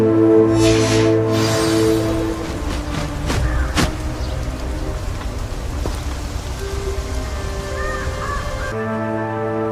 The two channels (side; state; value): both; identical; correlation 1.00